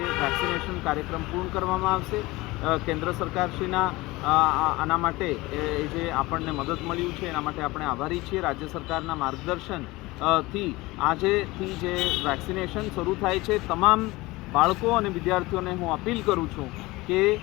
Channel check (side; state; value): right; quieter; 21.0 dB